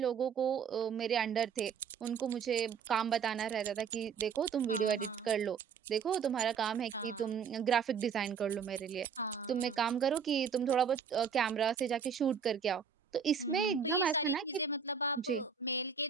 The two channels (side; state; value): left; quieter; 6.6 dB